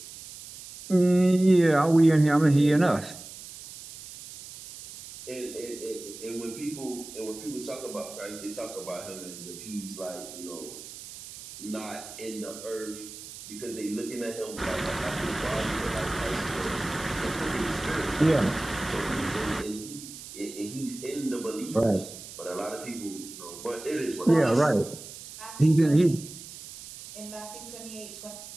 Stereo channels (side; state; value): right; noise; hiss, 14 dB below the sound